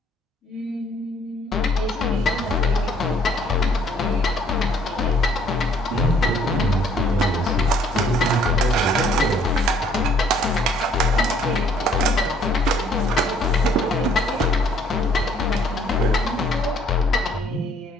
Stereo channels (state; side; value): normal; both; correlation 0.62